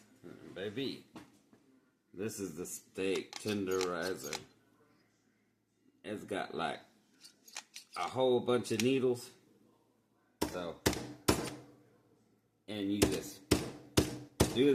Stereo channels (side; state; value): both; identical; correlation 1.00